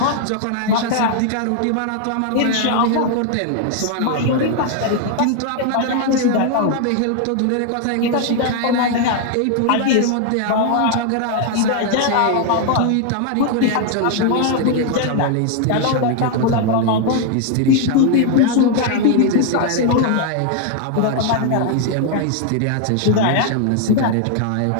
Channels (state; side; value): different; both; correlation 0.00